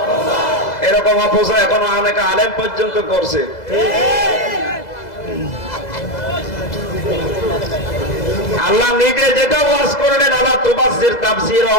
এরকম অপচয় এখনো অনেক আলেম পর্যন্ত করছে। আল্লাহ নিজে যেটা ওয়াজ করলেন, আল্লাহ তুবাজ্জির তাবযীরা,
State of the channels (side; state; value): right; late; 2.0 ms